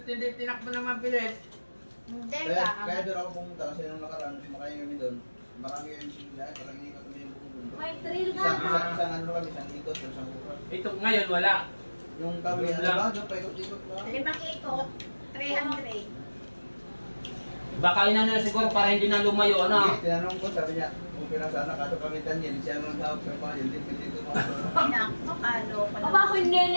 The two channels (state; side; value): inverted; both; correlation -1.00